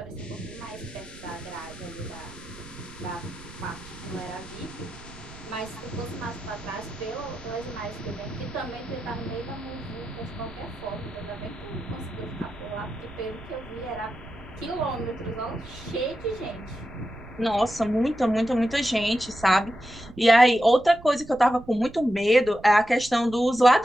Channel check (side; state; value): right; noise; rumble, 17 dB below the sound